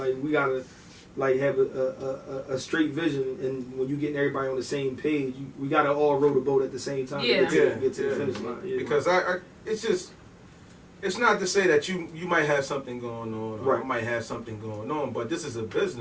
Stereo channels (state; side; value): identical; both; correlation 1.00